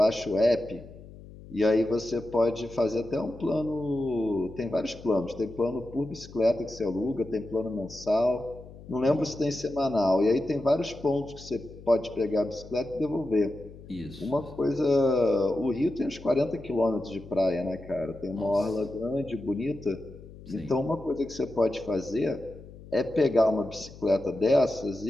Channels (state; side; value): noise; left; hum, 17 dB below the sound